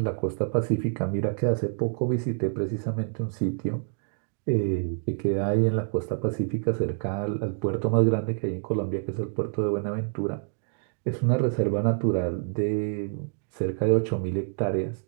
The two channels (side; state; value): left; silent; digital silence